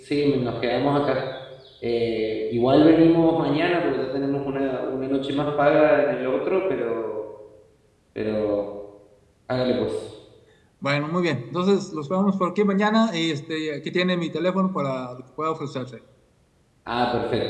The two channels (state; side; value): identical; both; correlation 1.00